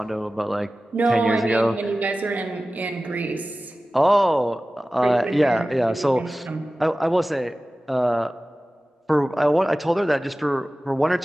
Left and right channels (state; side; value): normal; both; correlation 0.96